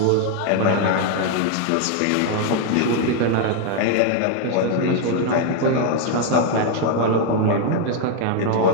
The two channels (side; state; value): both; different; correlation 0.01